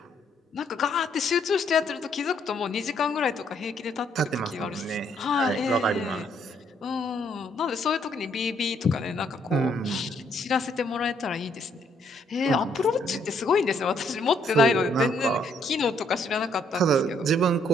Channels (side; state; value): both; normal; correlation 0.69